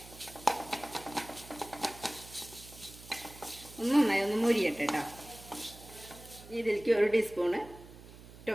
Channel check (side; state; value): right; noise; hum, 18 dB below the sound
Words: നന്നായി ഒന്ന് മൊരിയട്ടെ കേട്ടോ. ഇതിലേക്ക് ഒരു ടീസ്പൂണ്